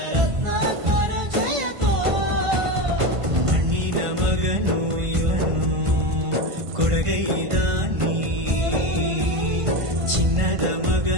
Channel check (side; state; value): left; late; 1.5 ms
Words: ರತ್ನಾಕರ ಜಯತೋ. ಮಣ್ಣಿನ ಮಗನು ಇವನು ಕೊಡುಗೈದಾನಿ, ಚಿನ್ನದ